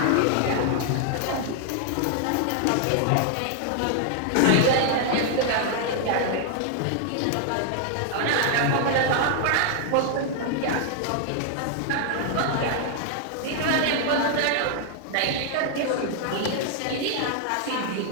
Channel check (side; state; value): both; different; correlation 0.00